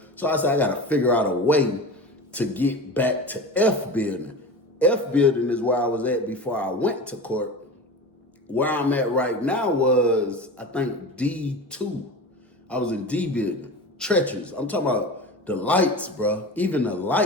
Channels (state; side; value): normal; both; correlation 0.30